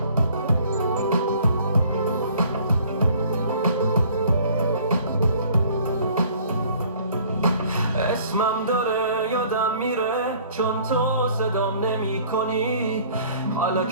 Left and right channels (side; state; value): both; inverted; correlation -0.54